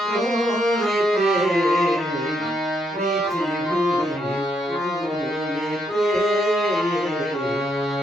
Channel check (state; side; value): normal; both; correlation 0.76